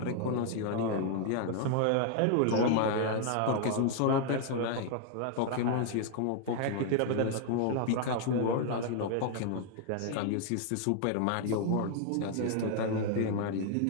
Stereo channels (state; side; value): different; both; correlation 0.00